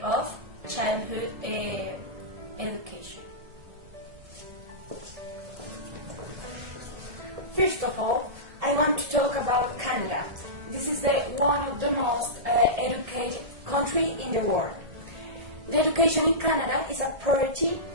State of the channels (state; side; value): late; left; 1.7 ms